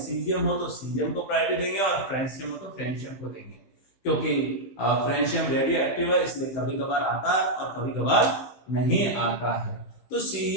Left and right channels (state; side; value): late; right; 15 ms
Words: हो तो सीजियम को प्रायोरिटी देंगे और फ्रेंशियम हो तो फ्रेंशियम को देंगे, क्योंकि फ्रेंशियम रेडियो एक्टिव है इसलिए कभी कभार आता है और कभी कभार नहीं आता है। तो